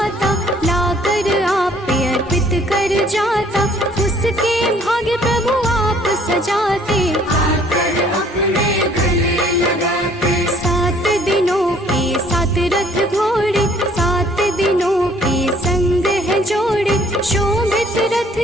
लाकर आप पे अर्पित कर जाता। उसके भाग्य प्रभु आप सजाते, आकर अपने गले लगाते। 7 दिनों के 7 रथ घोड़े, 7 दिनों के संग है जोड़े। शोभित रथ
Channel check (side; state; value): both; normal; correlation 0.59